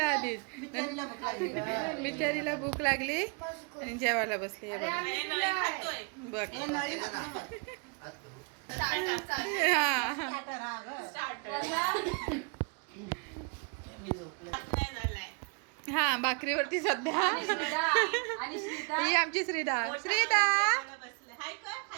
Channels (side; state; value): left; quieter; 35.2 dB